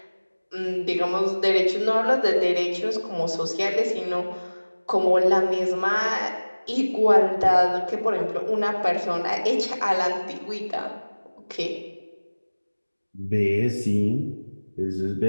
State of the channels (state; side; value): inverted; both; correlation -1.00